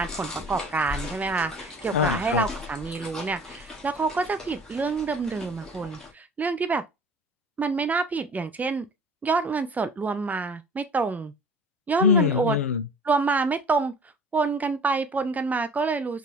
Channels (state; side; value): normal; both; correlation 0.44